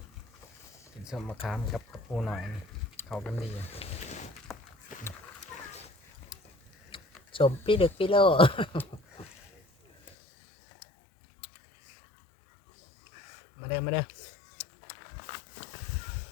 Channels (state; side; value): drops out; right; at 10.2 s